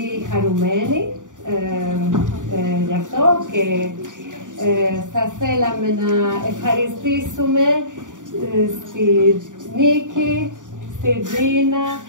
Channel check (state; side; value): late; left; 0.87 ms